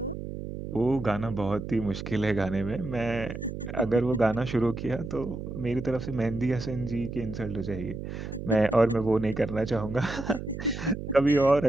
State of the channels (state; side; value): noise; right; hum, 7 dB below the sound